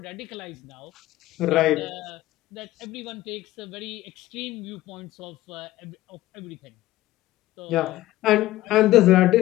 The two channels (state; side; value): quieter; right; 16.1 dB